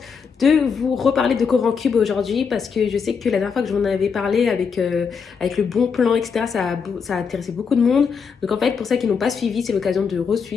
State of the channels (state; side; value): quieter; right; 6.0 dB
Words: de vous reparler de Coran Cube aujourd'hui parce que je sais que la dernière fois que je vous en avais parlé avec le bon plan, etc., ça a intéressé beaucoup de monde. Donc en fait, pour ceux qui n'ont pas suivi, c'est l'occasion de